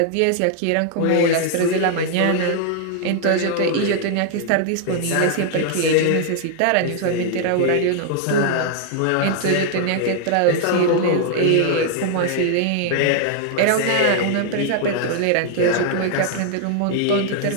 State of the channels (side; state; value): both; different; correlation -0.01